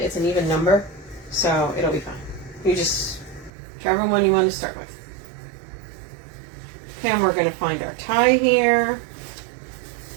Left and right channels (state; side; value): drops out; left; at 3.5 s